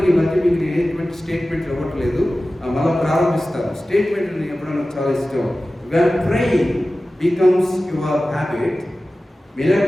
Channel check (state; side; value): normal; both; correlation 0.96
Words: ఈ మధ్య మీకు నేను ఎటువంటి స్టేట్మెంట్ ఇవ్వట్లేదు, మళ్ళీ ప్రారంభిస్తాను. స్టేట్మెంట్ నేను ఎప్పుడైనా చాలా ఇష్టం. When praying becomes your habit,